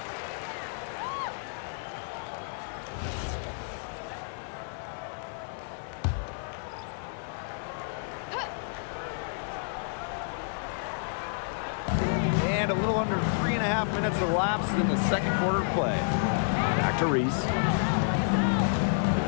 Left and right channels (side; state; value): right; silent; digital silence